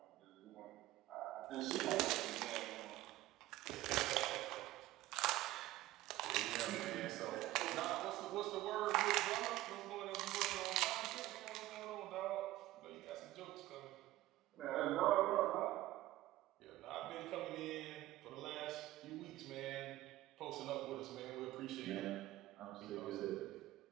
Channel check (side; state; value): left; quieter; 16.2 dB